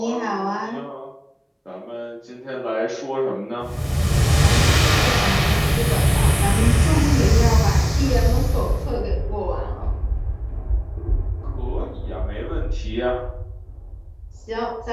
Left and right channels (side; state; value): both; identical; correlation 1.00